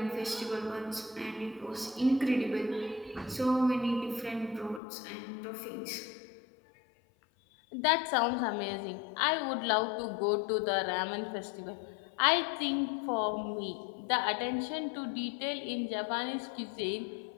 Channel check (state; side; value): drops out; right; at 4.8 s